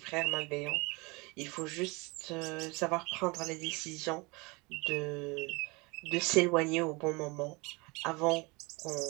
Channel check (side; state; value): left; quieter; 26.5 dB